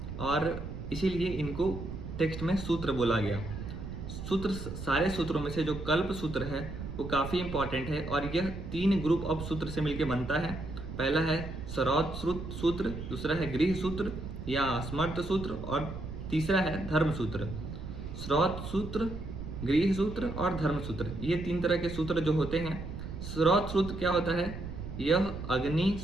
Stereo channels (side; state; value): right; noise; rumble, 8 dB below the sound